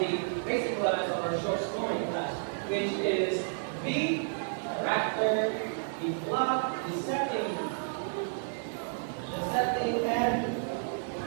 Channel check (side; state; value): left; silent; digital silence